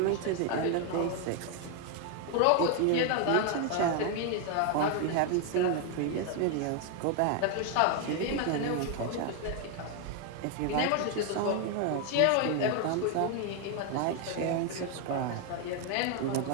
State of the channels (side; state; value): both; different; correlation 0.01